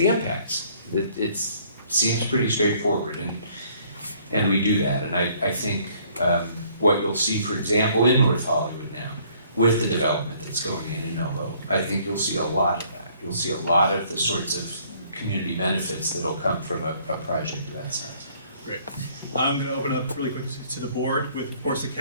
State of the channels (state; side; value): inverted; both; correlation -0.61